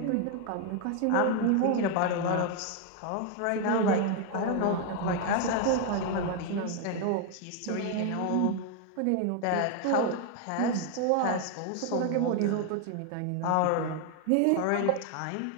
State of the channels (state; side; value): different; both; correlation 0.01